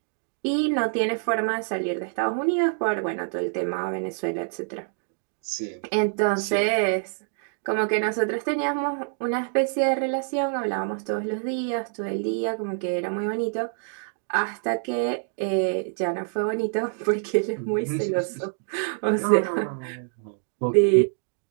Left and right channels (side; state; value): left; silent; digital silence